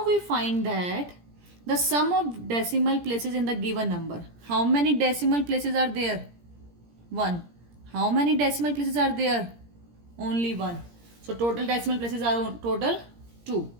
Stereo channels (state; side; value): late; left; 17 ms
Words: we find that the sum of decimal places in the given number. How many decimal places are there? 1. How many decimal places are there? Only 1. So total decimal places are total 2.